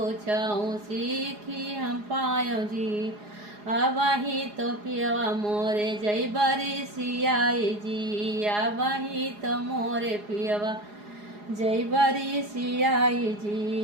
सीखी हम पायो जी। आबाही तो पियवा मोरे जई बरी सियाई जी, आबाही तो मोरे पियवा जई बरी सियाई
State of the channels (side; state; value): left; late; 4.8 ms